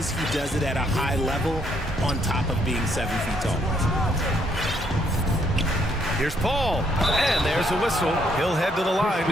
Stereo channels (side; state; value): both; normal; correlation 0.71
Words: it at a high level on top of being 7 feet tall. Here's Paul, and there's a whistle. He'll head to the line